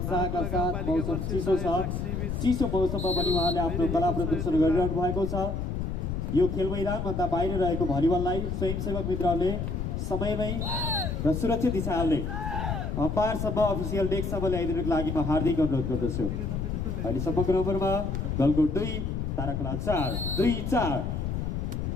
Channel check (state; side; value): noise; left; rumble, 2 dB below the sound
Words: साथ। मौसम चिसो छ, चिसो मौसममा पनि उहाँले आफ्नो कला प्रदर्शन गरिरहनु भएको छ। यो खेल मैदानभन्दा बाहिर रहेको भलिबललाई स्वयंसेवक मित्रहरूले समयमै र सुरक्षित हिसाबले अम्पायरसम्म अफिसियल डेस्कसम्म ल्याइदिनुको लागि म हार्दिक अनुरोध गर्दछु। अहिलेसम्मको नम्बरमा गलकोट 2 तारा खोला 4-2-4